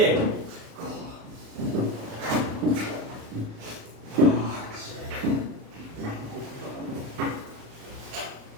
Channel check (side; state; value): left; late; 36 ms